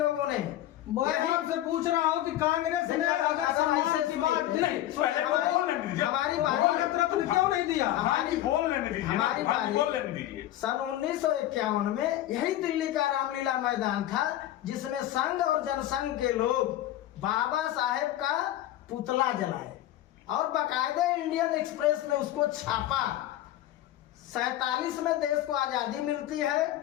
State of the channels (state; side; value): quieter; right; 13.7 dB